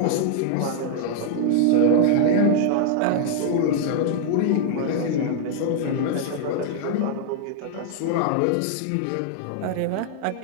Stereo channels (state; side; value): different; both; correlation 0.00